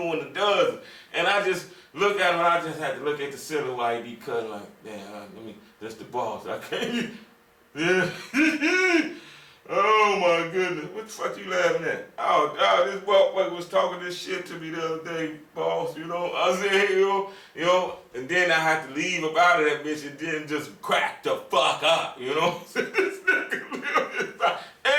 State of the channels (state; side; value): identical; both; correlation 1.00